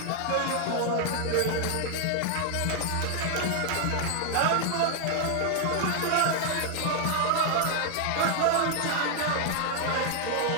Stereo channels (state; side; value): different; both; correlation 0.00